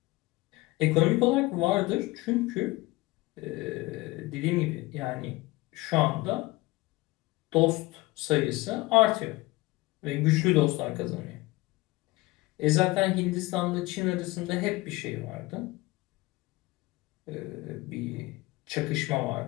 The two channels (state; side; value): quieter; right; 20.7 dB